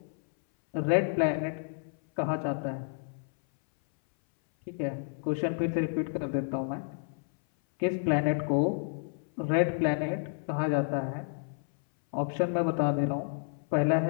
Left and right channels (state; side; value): silent; right; 58 dB below the other